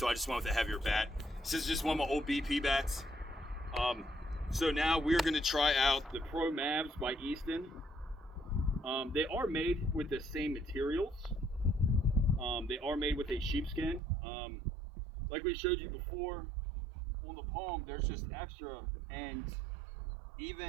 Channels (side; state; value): left; drops out; at 14.0 s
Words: I just went with a heavier bat. This is just one of my old BP bats. So now we're going to try out the Pro Mavs by Easton. They are made with the same materials. They are made with a sheepskin. Like we showed you before, on the palm, there's just extra, and